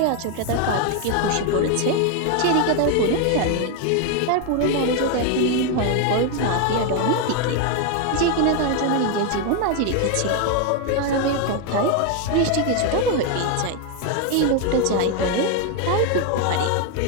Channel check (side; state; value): both; different; correlation 0.01